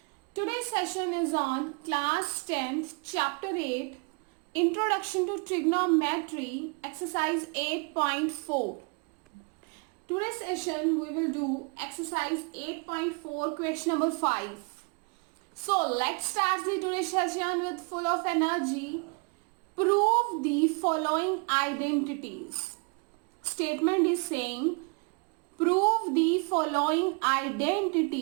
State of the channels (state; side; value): quieter; left; 33.2 dB